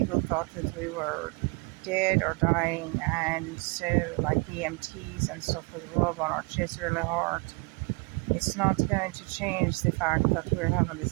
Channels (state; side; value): quieter; left; 30.4 dB